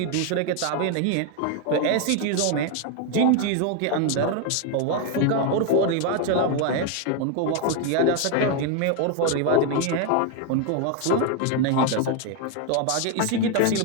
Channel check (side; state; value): both; different; correlation 0.01